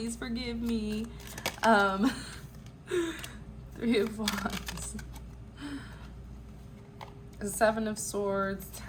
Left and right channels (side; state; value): both; identical; correlation 1.00